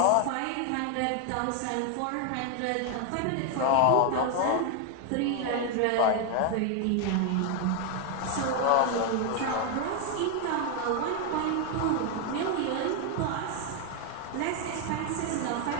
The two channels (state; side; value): different; both; correlation 0.00